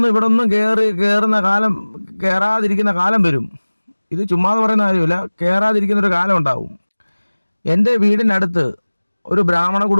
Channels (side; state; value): both; inverted; correlation -1.00